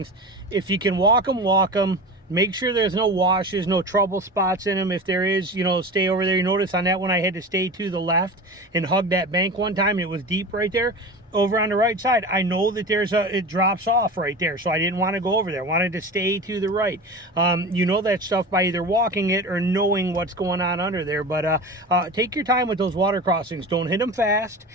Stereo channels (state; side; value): normal; both; correlation 0.31